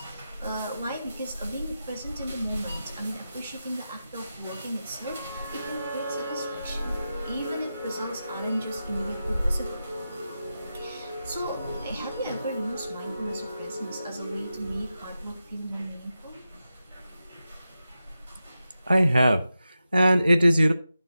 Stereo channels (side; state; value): both; inverted; correlation -0.91